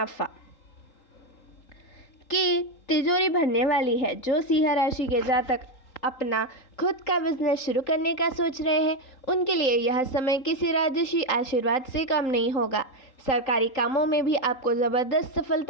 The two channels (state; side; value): late; right; 3.8 ms